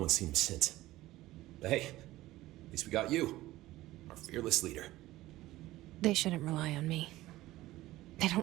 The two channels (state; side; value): quieter; left; 16.8 dB